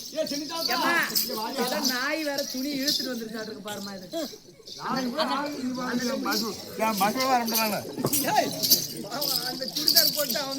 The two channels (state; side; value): identical; both; correlation 1.00